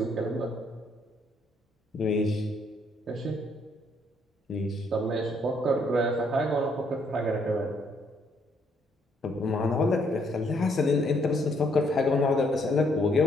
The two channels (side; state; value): both; normal; correlation 0.70